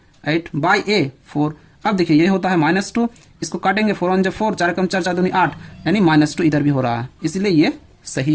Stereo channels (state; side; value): identical; both; correlation 1.00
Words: 8 बाई ए 4। अब देखिए ये होता है -2, इसको काटेंगे 4 1 4, 4 कम 4 4 दूनी 8, यानी -2 इधर भी हो रहा है, इसलिए ये